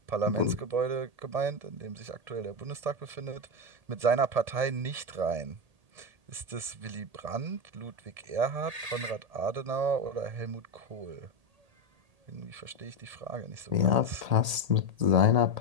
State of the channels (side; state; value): left; late; 1.8 ms